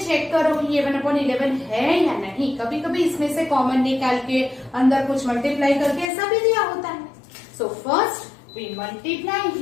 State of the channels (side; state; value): right; drops out; at 6.1 s